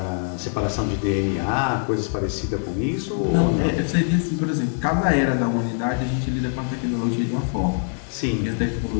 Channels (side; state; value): right; silent; 63 dB below the other